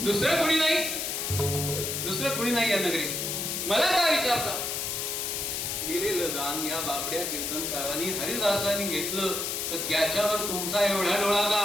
दुसरं कोणी नाही. दुसरं कोणी नाही या नगरीत. मला का विचारता? दिलेलं दान या बापड्या कीर्तनकारांनी हरिदासांनी घेतलं तर त्याच्यावर तुमचा एवढा डोळा का?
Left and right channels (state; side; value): noise; left; hiss, 2 dB below the sound